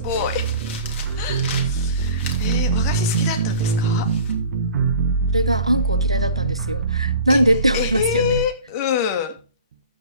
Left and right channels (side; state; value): both; inverted; correlation -0.43